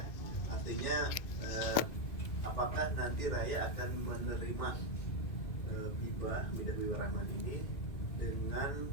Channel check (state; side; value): late; right; 2.4 ms